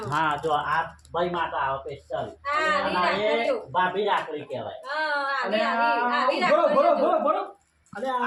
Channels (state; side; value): identical; both; correlation 1.00